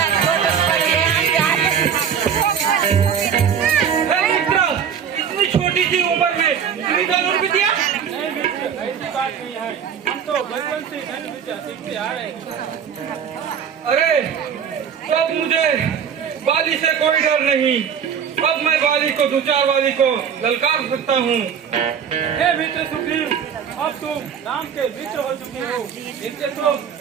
इतनी छोटी सी उम्र में इतनी कानून भी दिया। ऐसी बात नहीं है, हम तो बचपन से धन विद्या सीखते आ रहे हैं। अरे अब मुझे बाली से कोई डर नहीं। अब मैं बाली को दो चार बाली को ललकार सकता हूँ। हे मित्र सुग्रीव, अब तुम राम के मित्र हो चुके हो, इससे तो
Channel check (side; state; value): left; quieter; 7.8 dB